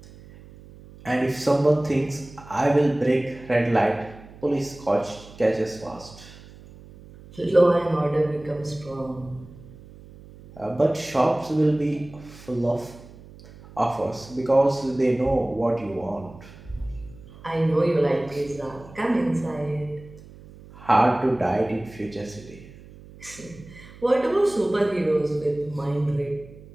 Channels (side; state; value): right; noise; hum, 20 dB below the sound